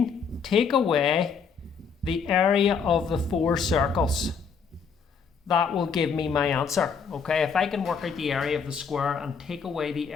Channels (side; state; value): right; quieter; 6.0 dB